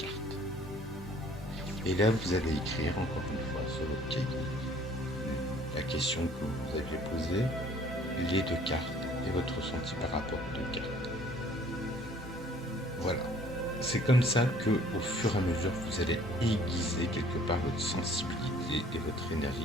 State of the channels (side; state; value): both; normal; correlation 0.56